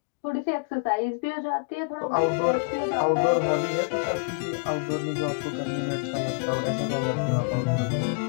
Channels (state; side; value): quieter; right; 37.8 dB